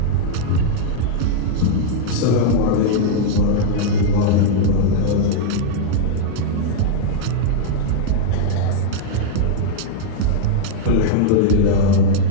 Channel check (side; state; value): both; different; correlation -0.01